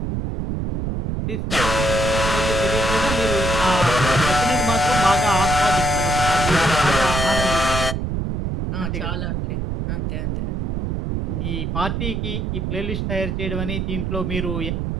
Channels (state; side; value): noise; right; rumble, 2 dB below the sound